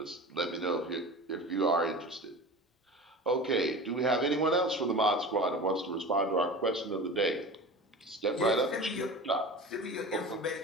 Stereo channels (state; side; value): normal; both; correlation 0.34